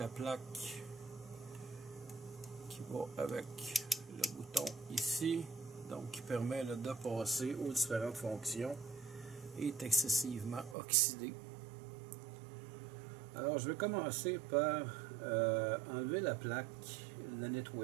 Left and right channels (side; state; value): left; drops out; at 10.8 s